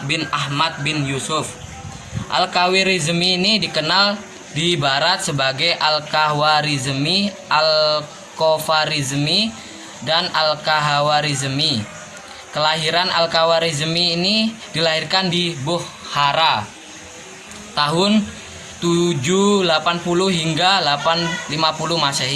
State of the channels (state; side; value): identical; both; correlation 1.00